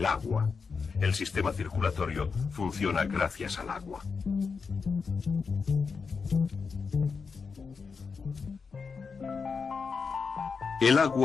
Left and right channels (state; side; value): quieter; right; 5.2 dB